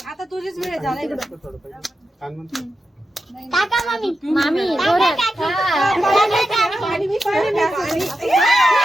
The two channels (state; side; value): normal; both; correlation 0.89